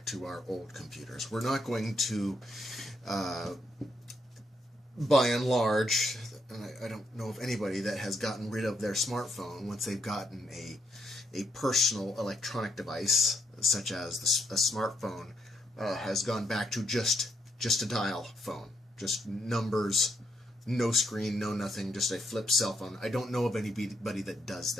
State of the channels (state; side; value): normal; both; correlation 0.76